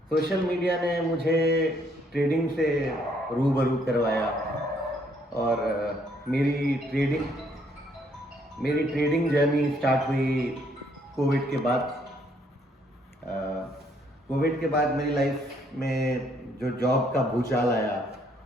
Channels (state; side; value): normal; both; correlation 0.68